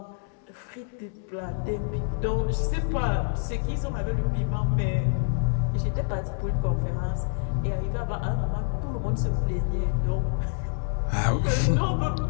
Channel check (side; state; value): right; silent; digital silence